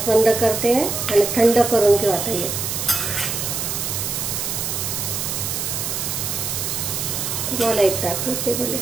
बंद करते आणि थंड करून घेऊ. आता हे तुम्हाला एक दाखवते, बोले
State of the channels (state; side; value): noise; right; hiss, 2 dB below the sound